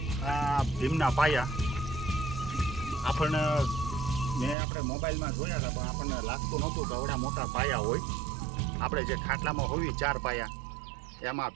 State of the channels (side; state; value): left; drops out; at 4.5 s